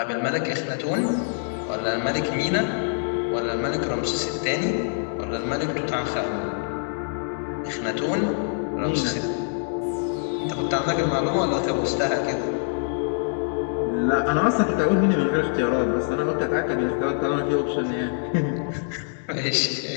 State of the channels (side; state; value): right; silent; digital silence